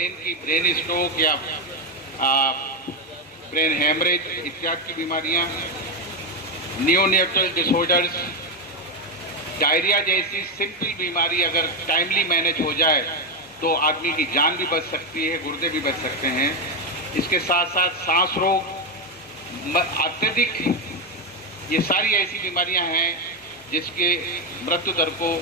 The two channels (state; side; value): normal; both; correlation 0.08